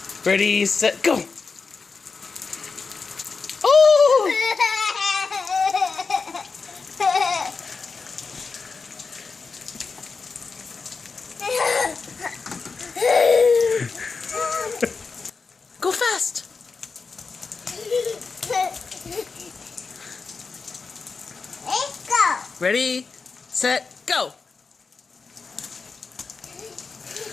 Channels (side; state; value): right; quieter; 4.7 dB